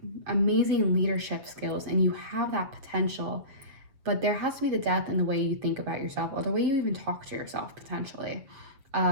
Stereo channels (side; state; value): left; late; 7.6 ms